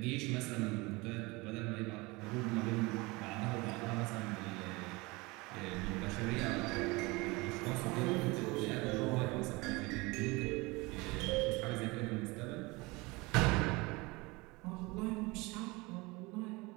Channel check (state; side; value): quieter; left; 24.2 dB